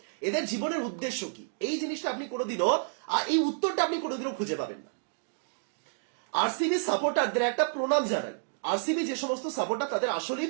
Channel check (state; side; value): silent; left; digital silence